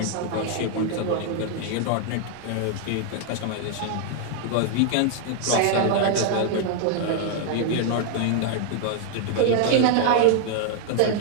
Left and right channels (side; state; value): both; different; correlation 0.00